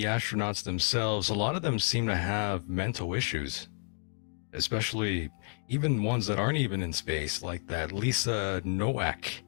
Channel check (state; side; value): silent; right; 57 dB below the other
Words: astronauts themselves. A lot of them seem to have mental issues, especially even ones that aren't even in space, like that Lisa Nowak,